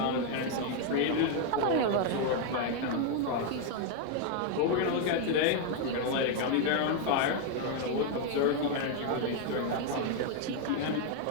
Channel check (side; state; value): both; different; correlation 0.01